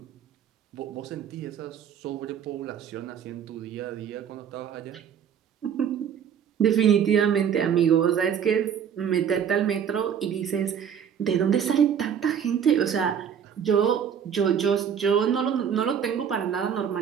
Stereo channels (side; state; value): left; quieter; 8.1 dB